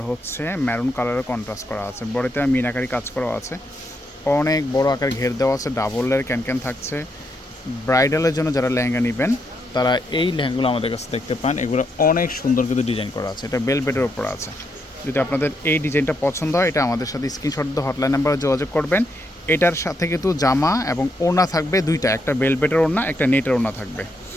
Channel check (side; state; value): both; normal; correlation 0.79